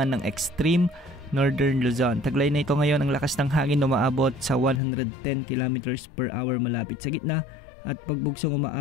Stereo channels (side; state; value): right; drops out; at 4.8 s